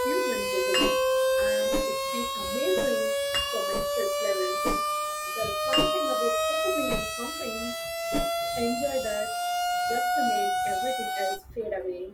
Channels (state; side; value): identical; both; correlation 1.00